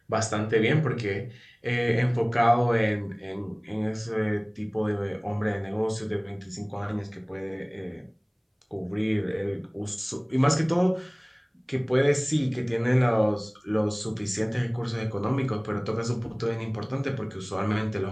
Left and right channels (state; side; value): identical; both; correlation 1.00